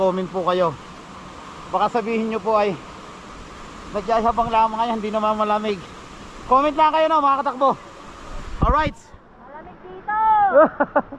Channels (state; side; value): identical; both; correlation 1.00